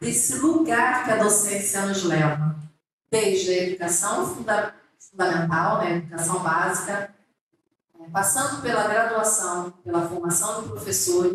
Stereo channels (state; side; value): identical; both; correlation 1.00